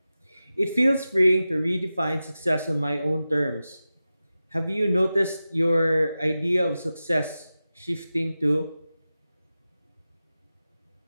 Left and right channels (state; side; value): inverted; both; correlation -0.94